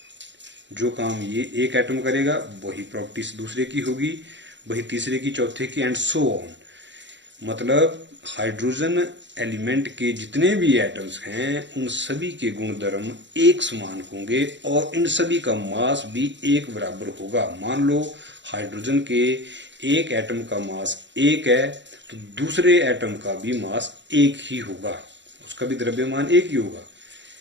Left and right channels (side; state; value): left; late; 0.53 ms